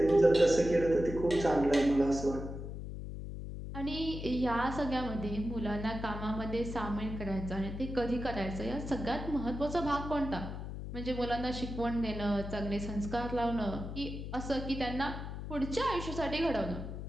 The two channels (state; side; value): noise; left; hum, 7 dB below the sound